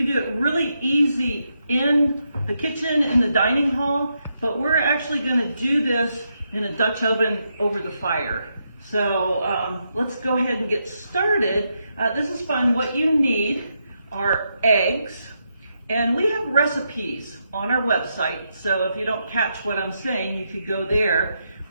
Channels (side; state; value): both; inverted; correlation -0.82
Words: do it really easy in the kitchen, in the dining hall, but we're actually going to do this in a Dutch oven over the fire. So let's go ahead and get started. This is fun. What you need are eggs. And we have recipes on our website, so if you don't catch what I'm saying, you could go there.